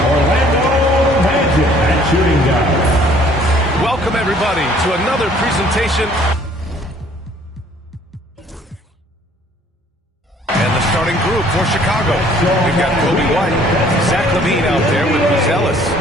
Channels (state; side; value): normal; both; correlation 0.58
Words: Orlando Magic at shooting guard. Welcome, everybody, to another presentation. And the starting group for Chicago. We've got Coby White, Zach LaVine out there with Buzelis.